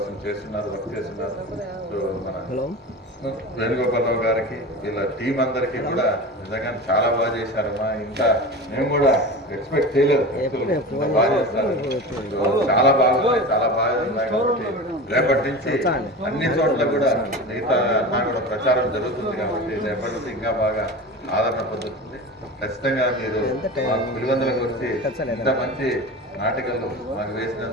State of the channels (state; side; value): normal; both; correlation 0.30